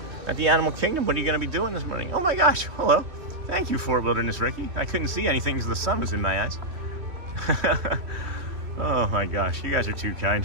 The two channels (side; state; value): left; late; 3.1 ms